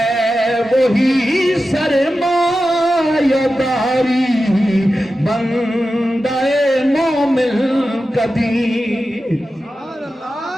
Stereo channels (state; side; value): normal; both; correlation 0.92